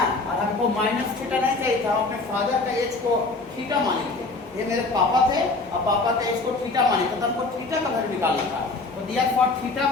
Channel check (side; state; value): right; quieter; 3.5 dB